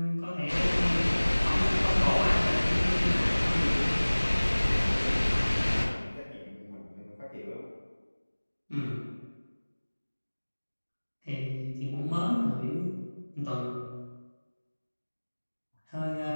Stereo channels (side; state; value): both; inverted; correlation -1.00